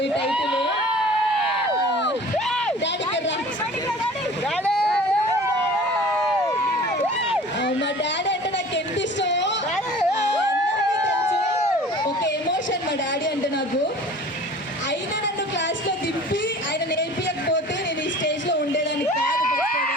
ఈ టైటిల్. మా డాడీ అంటే నాకు ఎంత ఇష్టమో అందరికీ తెలుసు. ఒక ఎమోషన్ మా డాడీ అంటే నాకు. అయినా నన్ను క్లాస్లో దింపి ఆయన నేర్పించకపోతే నేను ఈ స్టేజ్లో ఉండేదాన్ని కాదు.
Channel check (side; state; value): both; normal; correlation 0.44